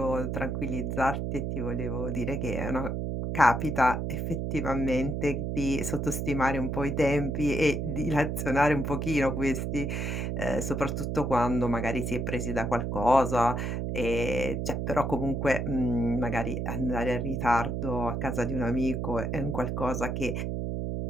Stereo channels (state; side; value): noise; right; hum, 2 dB below the sound